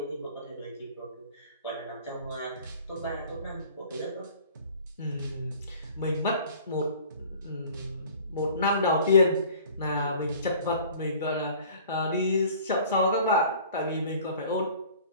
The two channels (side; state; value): both; inverted; correlation -0.48